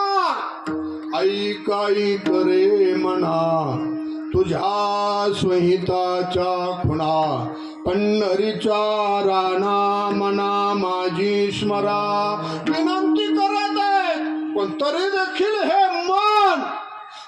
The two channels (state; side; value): identical; both; correlation 1.00